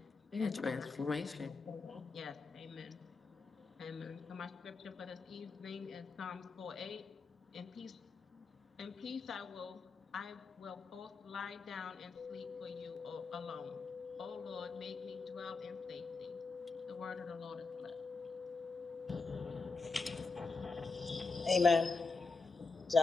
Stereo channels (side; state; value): right; quieter; 4.2 dB